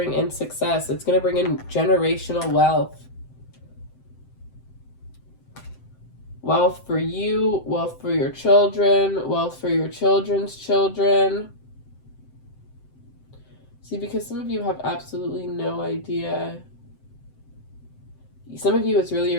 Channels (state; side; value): late; right; 7.7 ms